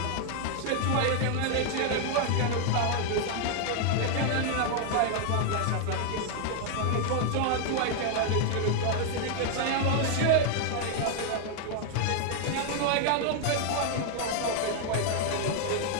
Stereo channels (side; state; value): both; different; correlation 0.00